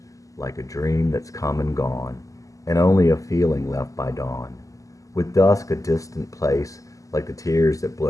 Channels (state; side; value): late; right; 0.16 ms